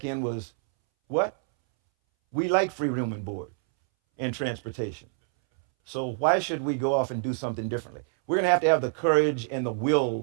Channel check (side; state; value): left; silent; 60 dB below the other